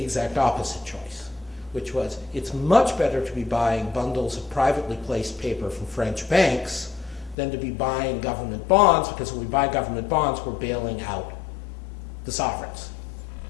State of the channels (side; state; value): right; drops out; at 7.4 s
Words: exact opposite choice, which was it's much better to be buying bundles of privately placed paper from French banks than to be buying government bonds, because when we buy government bonds, we're bailing out the sovereigns.